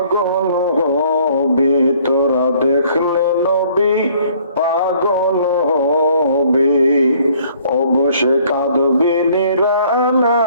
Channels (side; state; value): both; inverted; correlation -0.59